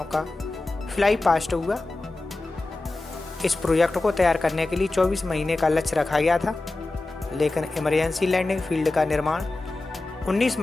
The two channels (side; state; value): right; quieter; 3.0 dB